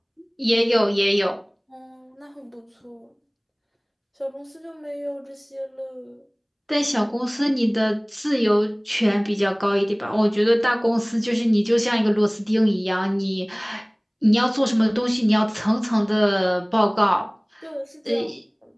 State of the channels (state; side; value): identical; both; correlation 1.00